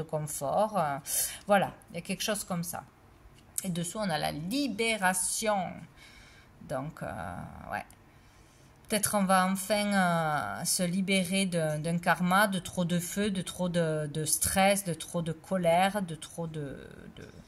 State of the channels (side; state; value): both; identical; correlation 1.00